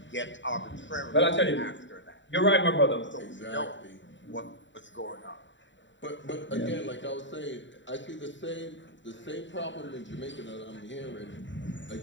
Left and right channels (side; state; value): right; late; 0.54 ms